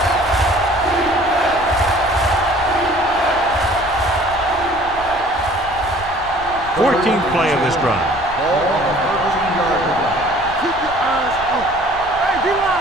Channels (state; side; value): noise; left; rumble, 15 dB below the sound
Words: Fourteenth play of this drive. Ball on the 13-yard line. Keep your eyes open. Hey, D-line,